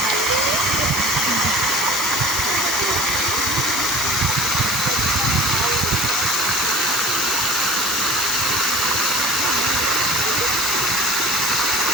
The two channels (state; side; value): noise; left; hiss, 7 dB below the sound